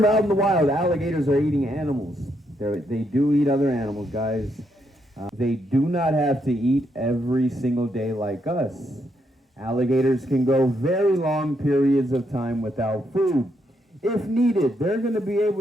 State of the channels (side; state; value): both; normal; correlation 0.77